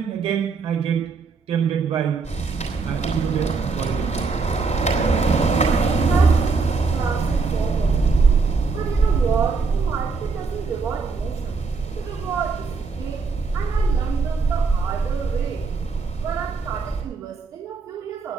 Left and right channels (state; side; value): quieter; left; 4.5 dB